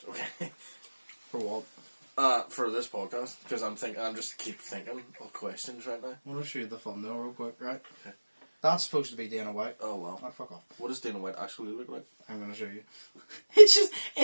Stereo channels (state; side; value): inverted; both; correlation -1.00